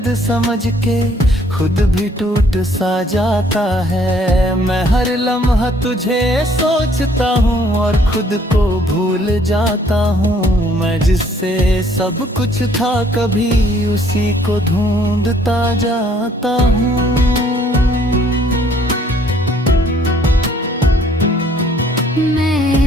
समझ के खुद भी टूट सा जाता है। मैं हर लम्हा तुझे सोचता हूँ और खुद को भूल जाता हूँ। मैं जिससे सब कुछ था कभी उसी को ढूंढता जाता हूँ।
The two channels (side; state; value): both; normal; correlation 0.62